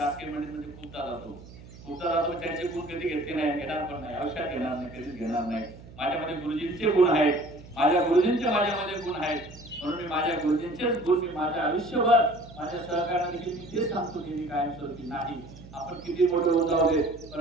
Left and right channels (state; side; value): noise; right; hum, 18 dB below the sound